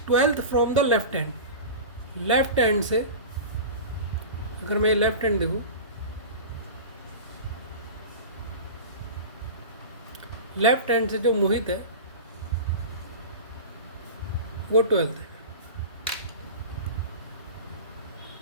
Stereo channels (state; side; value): inverted; both; correlation -0.30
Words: 12th from the left hand, left hand से अगर मैं लेफ्ट हैंड देखूँ, लेफ्ट हैंड से जो मोहित है वो 12th है।